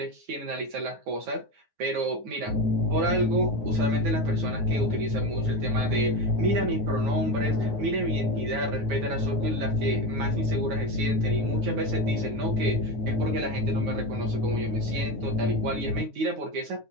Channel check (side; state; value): left; late; 9.5 ms